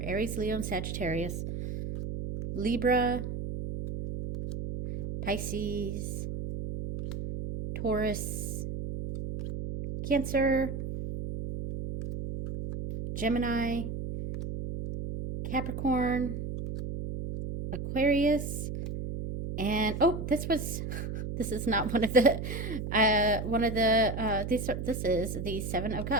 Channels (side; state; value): right; noise; hum, 5 dB below the sound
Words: Aries, Leo, and Sagittarius, Libra, Pisces, Taurus, Cancer, Gemini, Capricorn, Aquarius, and oh, this is not one of the this is the Seven of